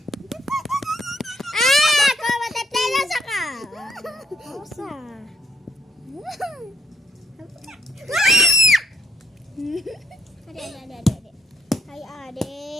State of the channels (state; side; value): normal; both; correlation 0.71